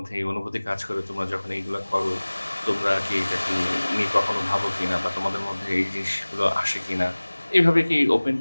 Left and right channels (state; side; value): inverted; both; correlation -1.00